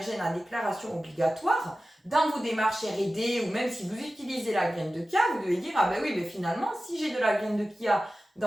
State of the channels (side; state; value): both; normal; correlation 0.95